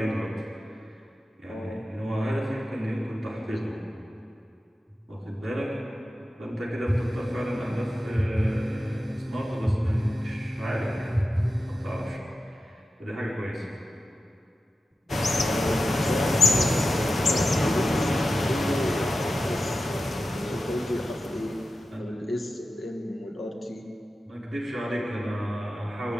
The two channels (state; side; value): normal; both; correlation 0.93